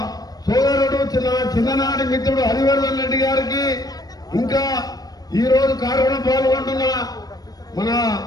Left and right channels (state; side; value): late; right; 0.19 ms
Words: సోదరుడు చిన్ననాటి మిత్రుడు హరివర్ధన్ రెడ్డి గారికి, ఇంకా ఈ రోజు కార్యక్రమం పాల్గొంటున్న మన